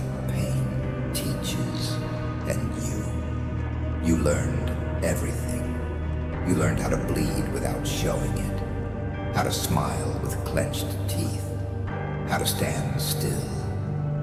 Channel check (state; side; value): identical; both; correlation 1.00